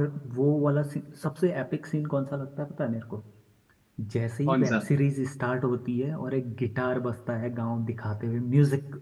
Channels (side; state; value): both; identical; correlation 1.00